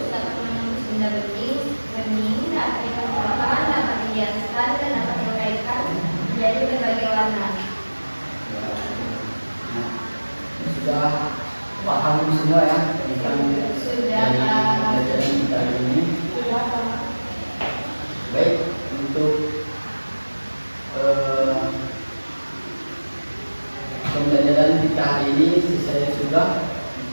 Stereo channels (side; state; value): both; inverted; correlation -1.00